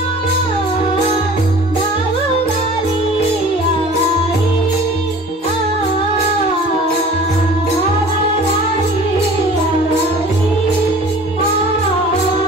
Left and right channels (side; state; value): both; normal; correlation 0.45